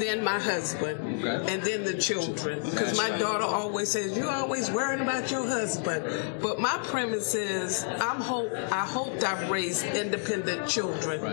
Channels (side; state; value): right; silent; digital silence